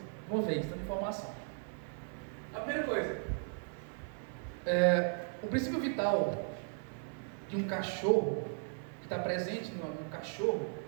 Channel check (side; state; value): left; silent; 53 dB below the other